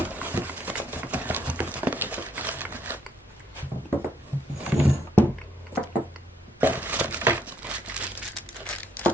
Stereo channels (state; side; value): normal; both; correlation 0.70